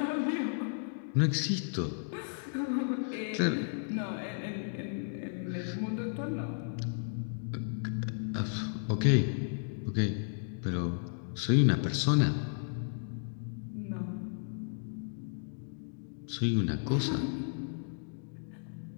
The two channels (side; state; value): right; silent; digital silence